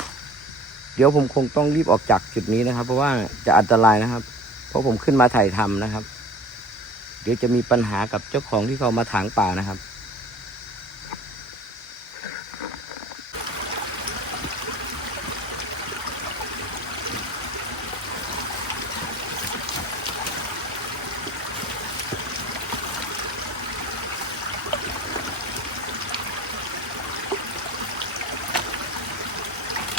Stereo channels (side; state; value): both; normal; correlation 0.42